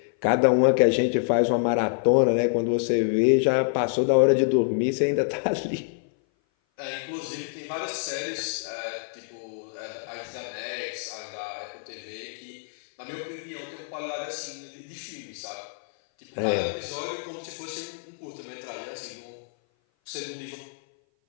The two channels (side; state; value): right; silent; 57 dB below the other